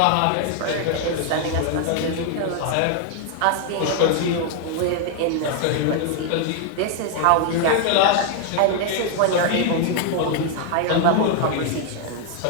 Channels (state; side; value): different; both; correlation 0.00